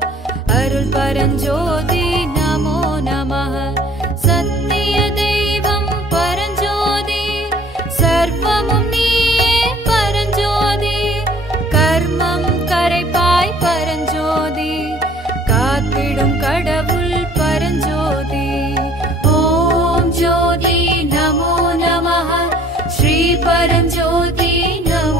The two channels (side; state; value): both; normal; correlation 0.54